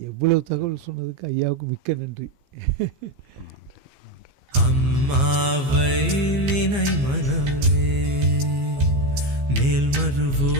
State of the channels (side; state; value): left; late; 15 ms